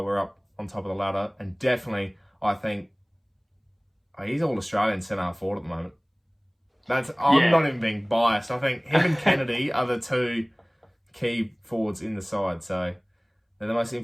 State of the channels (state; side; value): identical; both; correlation 1.00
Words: up on top of the ladder. And definitely, I think, he's all-Australian centre forward at the moment. I'm not even being biased. I think him and Kennedy are the two key forwards in the side. So they're the most